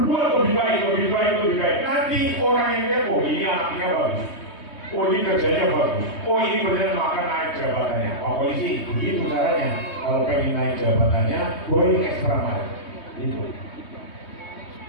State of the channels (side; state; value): right; late; 3.2 ms